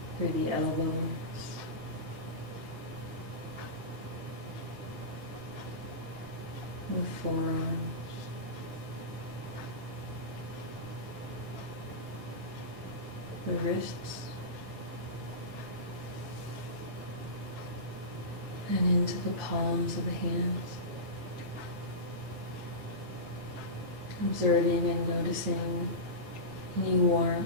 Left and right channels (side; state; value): left; late; 9.4 ms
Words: Through the elbows, the forearms, the wrists, and into the palms of the hands. Observing and noticing any